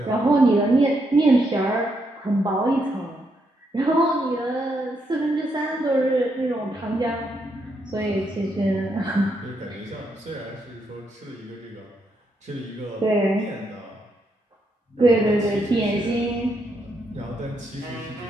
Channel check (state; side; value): normal; both; correlation 0.78